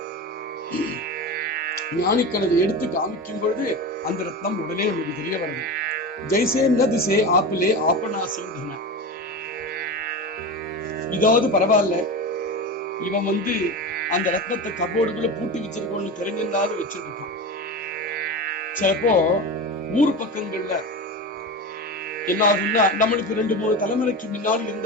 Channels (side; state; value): both; normal; correlation 0.25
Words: ஞானிகள் அதை எடுத்து காமிக்கும் பொழுது அந்த ரத்னம் உடனே நமக்கு தெரிய வருது. ஜெய்சே ந திசே ஆப்பிலே ஆப்பனாசிந்தன. இதாவது பரவாயில்ல, இவன் அந்த ரத்னத்தை கபோர்டுக்குள்ள பூட்டி வச்சிருக்கோன்னு தெரிஞ்சிருந்தாலும் வச்சிருக்கான். சிலப்போ ஊர் பக்கங்கள்ல என்ன ஆகும்னா, நம்மளுக்கு 2-3 தலைமுறைக்கு முன்னாடி